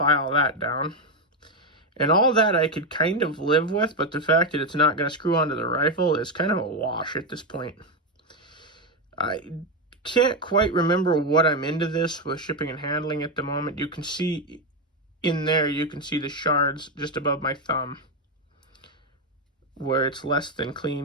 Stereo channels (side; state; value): both; normal; correlation 0.08